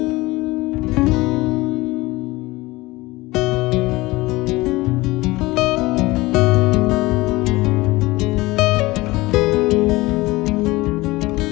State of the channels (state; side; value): quieter; right; 20.8 dB